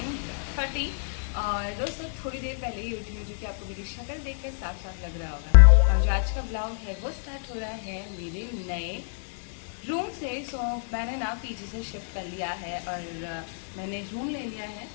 और दोस्तों थोड़ी देर पहले ही उठी हूँ, जो कि आपको मेरी शक्ल देख कर साफ साफ लग रहा होगा। और जो आज का ब्लॉग है वो स्टार्ट हो रहा है मेरे नए रूम से। सो मैंने ना पीजी से शिफ्ट कर लिया है और मैंने रूम ले लिया है।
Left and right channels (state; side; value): silent; right; 59 dB below the other